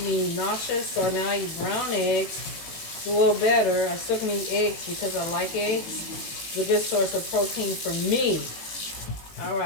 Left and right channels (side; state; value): right; late; 18 ms